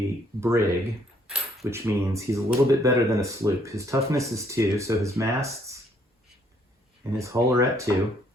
brig, which means he's a little bit better than a sloop. His toughness is 2, so his masts and his hull are at 2.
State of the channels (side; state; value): both; normal; correlation 0.67